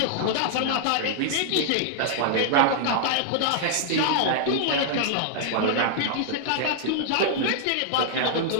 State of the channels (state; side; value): different; both; correlation -0.01